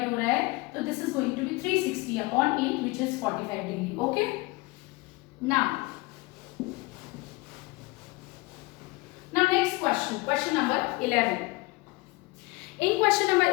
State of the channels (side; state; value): right; quieter; 23.3 dB